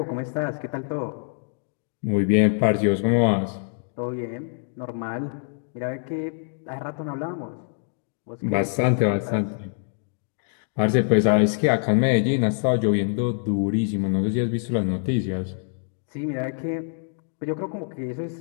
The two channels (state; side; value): silent; right; digital silence